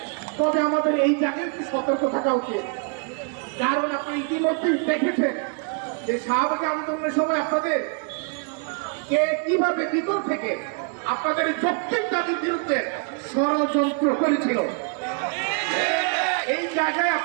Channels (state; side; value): quieter; left; 36.0 dB